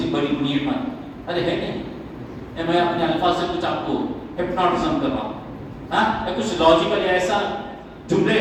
بڑی نعمت. ارے ہے نہیں، میں اپنے الفاظ سے کچھ آپ کو ہپنوٹزم کر رہا ہوں، ہاں کچھ لاجیکل ایسا جملے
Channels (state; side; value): identical; both; correlation 1.00